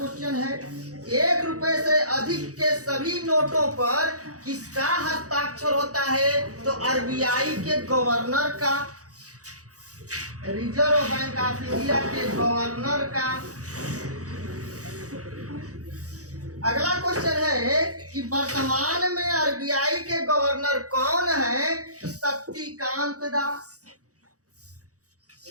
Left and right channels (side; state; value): left; late; 0.66 ms